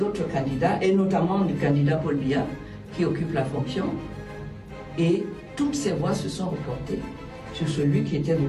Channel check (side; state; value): both; identical; correlation 1.00